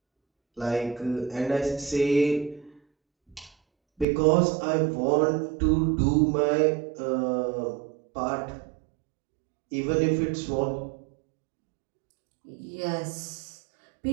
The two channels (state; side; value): drops out; left; at 4.0 s